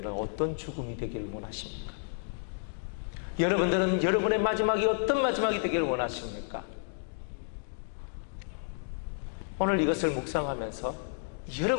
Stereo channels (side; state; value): right; silent; digital silence